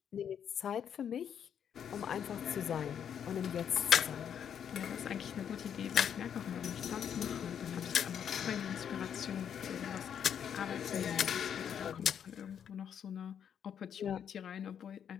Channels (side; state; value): right; quieter; 8.5 dB